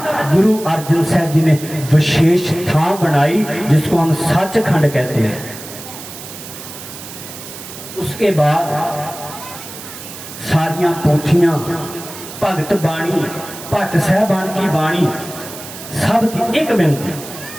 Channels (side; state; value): right; noise; hiss, 13 dB below the sound